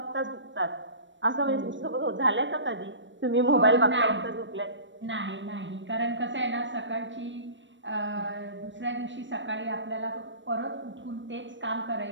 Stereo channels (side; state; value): left; late; 0.54 ms